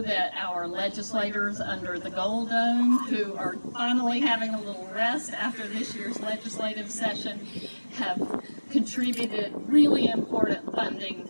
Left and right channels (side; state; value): both; inverted; correlation -1.00